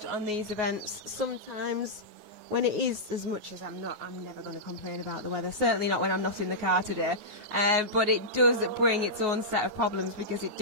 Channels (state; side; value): late; left; 9.5 ms